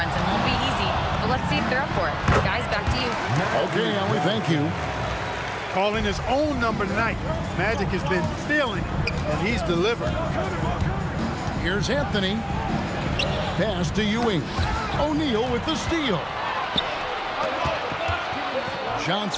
won't be easy, but let's see if they're up for it. Guys, back to you. Okay, Allie, thank you. Calling his own number tonight. Magic has been feeling it, and he's delivered. Here's Anthony. Pass to Ewing. O'Neal with the steal.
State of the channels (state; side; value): identical; both; correlation 1.00